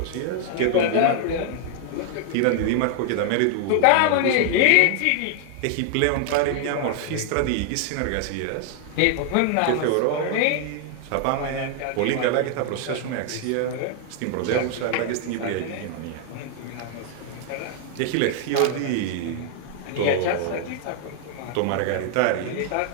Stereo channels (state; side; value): different; both; correlation 0.00